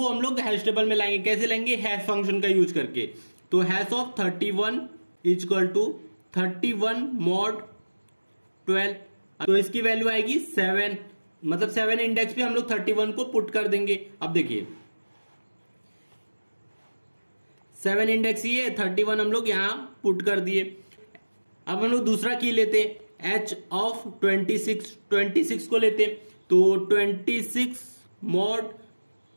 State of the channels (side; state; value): both; inverted; correlation -1.00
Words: हम लोग हैश टेबल में लाएंगे। कैसे लाएंगे? हैश फंक्शन का यूज करके। तो hash of 31 equal to 31 mod 12। तो इसकी वैल्यू आएगी 7, मतलब 7 इंडेक्स पे हम लोग 31 को पुट कर देंगे। अब देखिए 7 इंडेक्स ये 31 हम लोग यहां पुट कर दिए। अब हम लोग दूसरा की लेते हैं, h ऑफ 26 को लेते हैं। तो 26 मॉड